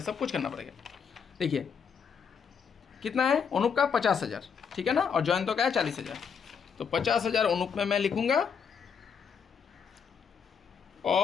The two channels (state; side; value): quieter; right; 6.6 dB